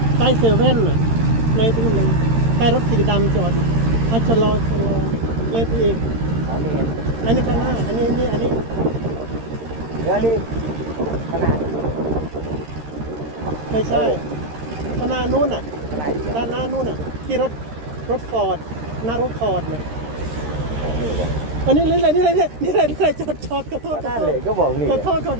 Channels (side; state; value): left; late; 13 ms